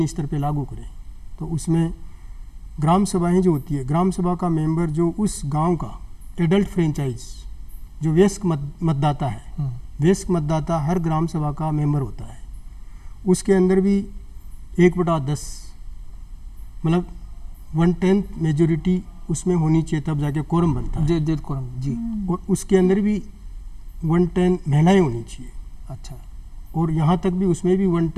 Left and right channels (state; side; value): identical; both; correlation 1.00